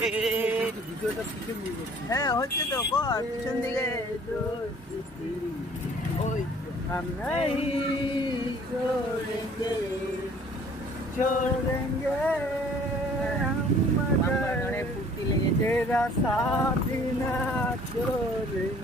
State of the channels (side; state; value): both; normal; correlation 0.54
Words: হ্যাঁ হচ্ছে তো পিছন দিকে ওই छोड़ेंगे ফুর্তি লেগেছে तेरा साथ ना